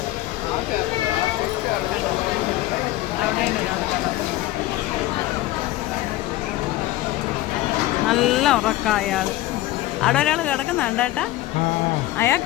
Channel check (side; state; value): right; quieter; 16.3 dB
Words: അവിടെയുണ്ട് ഒരാൾ കിടക്കുന്നു. നല്ല ഉറക്കം അയാൾ. അവിടെ ഒരാൾ കിടക്കുന്നുണ്ട് കേട്ടാ.